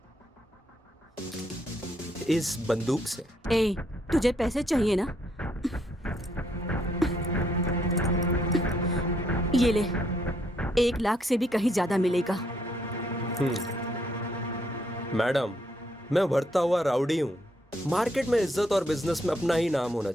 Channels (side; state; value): both; normal; correlation 0.73